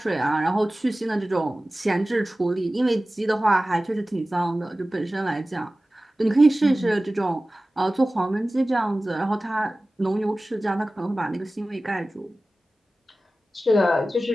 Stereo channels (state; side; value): normal; both; correlation 0.96